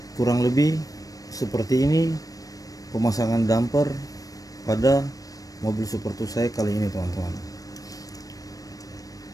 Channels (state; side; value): late; right; 0.17 ms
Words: kurang lebih seperti ini pemasangan damper pada mobil Super 2 saya kali ini teman-teman.